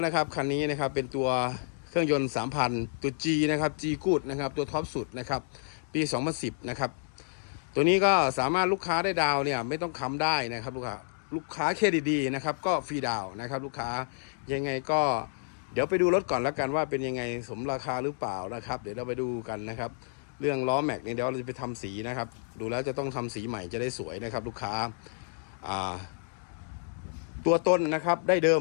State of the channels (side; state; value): right; silent; digital silence